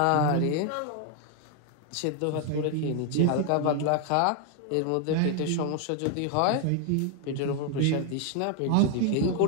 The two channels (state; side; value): different; both; correlation 0.00